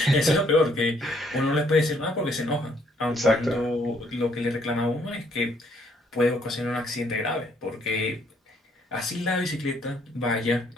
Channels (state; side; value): normal; both; correlation 0.68